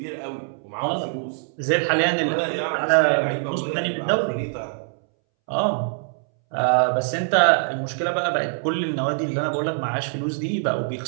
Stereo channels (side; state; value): left; silent; 63 dB below the other